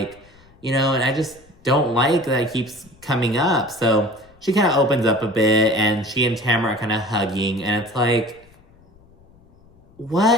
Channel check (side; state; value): left; noise; rumble, 28 dB below the sound